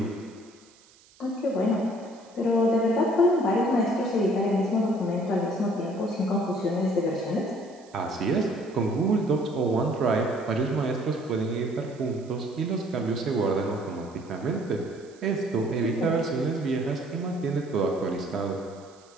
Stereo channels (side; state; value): right; noise; hiss, 28 dB below the sound